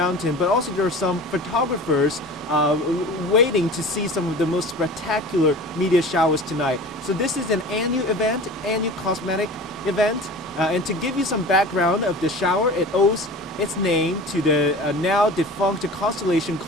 but also there are some photographers waiting to see some of the most spectacular meteor showers tonight. So this is an annual event, annual cosmetic event, and to give you some background of the shower, it owes its name to the now defunct constellation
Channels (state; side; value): normal; both; correlation 0.38